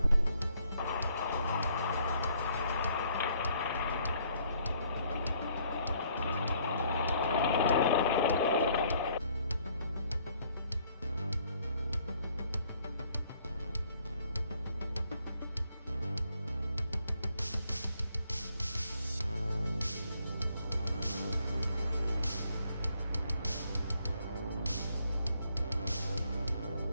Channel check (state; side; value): inverted; both; correlation -0.66